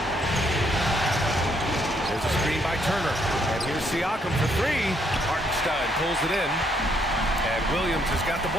There's a screen by Turner. And here's Siakam for 3. Hartenstein pulls it in. And Williams has got the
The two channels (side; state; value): both; normal; correlation 0.71